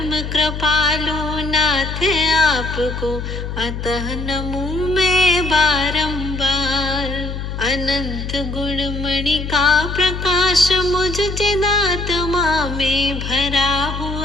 कृपालु नाथ आपको अतः नमूं मैं बारंबार। अनंत गुणमणि का प्रकाश मुझ चिदात्मा में भरा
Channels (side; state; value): left; noise; hum, 6 dB below the sound